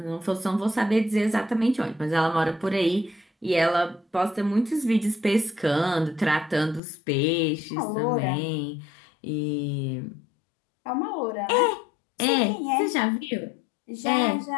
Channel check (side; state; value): right; drops out; at 6.8 s